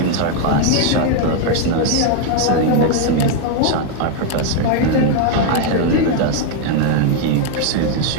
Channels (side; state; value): both; different; correlation 0.01